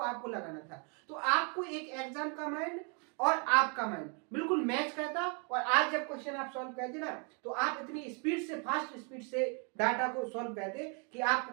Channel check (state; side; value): quieter; left; 36.6 dB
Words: आपको लगाना था। तो आपको एक एग्जाम का माइंड और आपका माइंड बिल्कुल मैच करता। और आज जब क्वेश्चन आप सॉल्व करते ना, तो आप इतनी स्पीड से, फास्ट स्पीड से डाटा को सॉल्व करते कि आपको